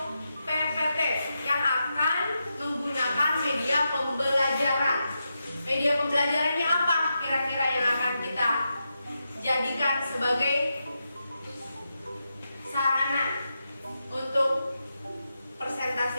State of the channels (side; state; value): both; inverted; correlation -0.87